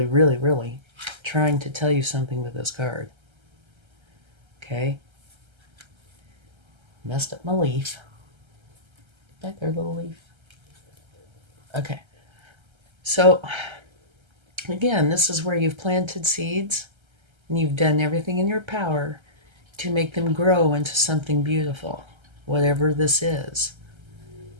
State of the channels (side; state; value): left; late; 1.3 ms